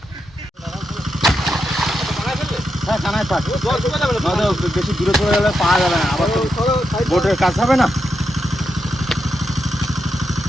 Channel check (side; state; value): both; normal; correlation 0.85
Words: হ্যাঁ, কানায় পাক। জল শুকিয়ে যাবে না তো? বেশি দূরে চলে গেলে পাওয়া যাবে না, আবার তো বোটের কাজ হবে না।